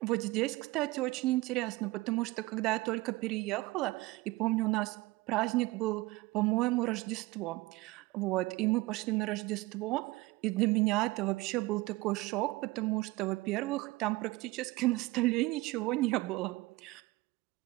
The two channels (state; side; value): quieter; left; 20.7 dB